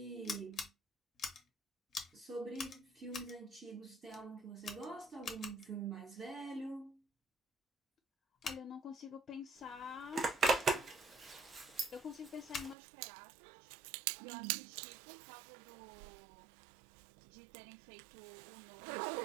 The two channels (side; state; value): left; drops out; at 12.8 s